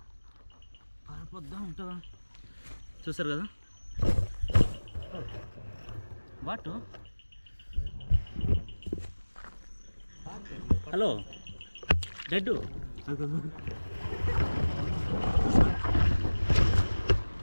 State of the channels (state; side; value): inverted; both; correlation -1.00